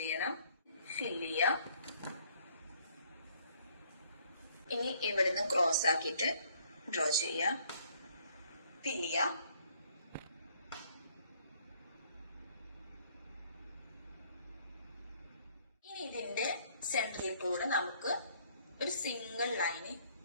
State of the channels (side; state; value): both; inverted; correlation -0.63